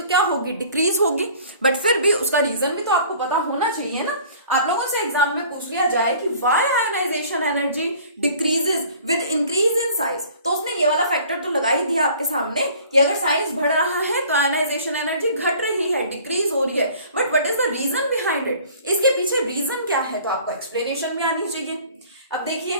क्या होगी, डिक्रीज होगी। बट फिर भी उसका रीजन भी तो आपको पता होना चाहिए ना। आप लोगों से एग्जाम में पूछ लिया जाए कि why ionization energy decreases with increase in size, तो उसने ये वाला फैक्टर तो लगा ही दिया आपके सामने कि अगर साइज बढ़ रहा है तो आयनाइजेशन एनर्जी घट रही है, डिक्रीज हो रही है। But what is the reason behind it, इसके पीछे रीजन क्या है, तो आपको एक्सप्लेनेशन भी आनी चाहिए। अब देखिए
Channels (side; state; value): both; inverted; correlation -0.50